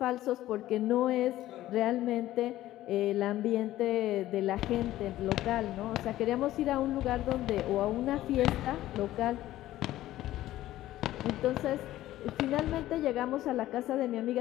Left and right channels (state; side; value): quieter; right; 14.7 dB